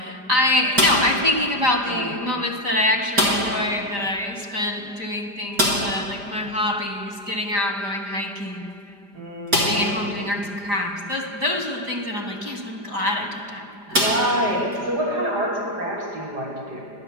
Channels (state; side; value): late; left; 5.0 ms